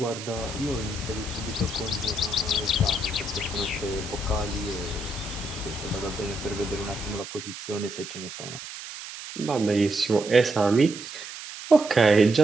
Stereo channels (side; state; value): right; noise; hiss, 11 dB below the sound